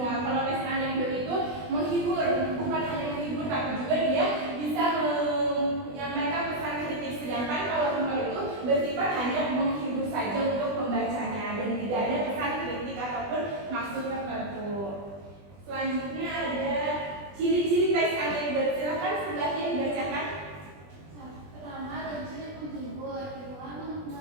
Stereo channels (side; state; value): left; late; 20 ms